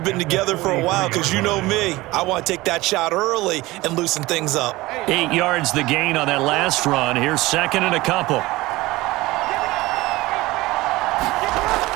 been together for a while because you know me. I want to take that shot early and loosen things up. 8 yards the gain on that last run. Here's second and a couple.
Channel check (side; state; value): left; quieter; 19.7 dB